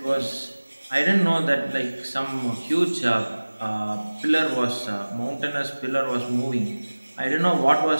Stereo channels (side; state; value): both; inverted; correlation -1.00